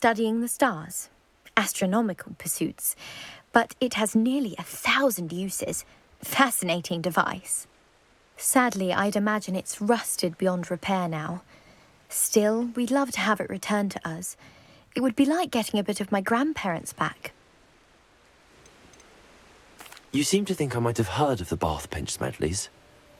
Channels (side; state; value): both; identical; correlation 1.00